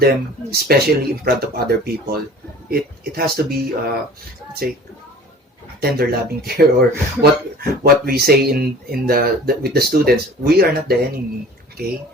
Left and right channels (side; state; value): both; normal; correlation 0.45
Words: especially in front of other people. It has to be let's say tender loving care, or what we say in the with the students. We are not the enemy. Okay,